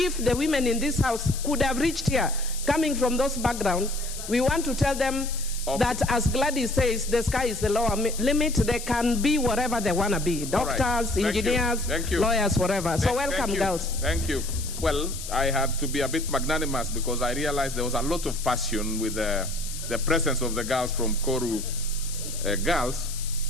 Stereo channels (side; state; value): left; noise; hiss, 10 dB below the sound